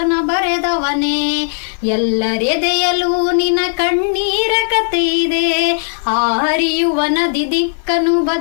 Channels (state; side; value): silent; right; 57 dB below the other